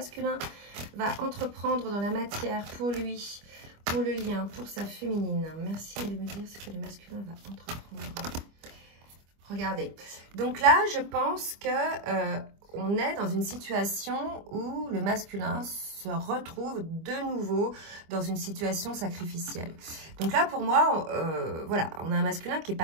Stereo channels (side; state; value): left; late; 25 ms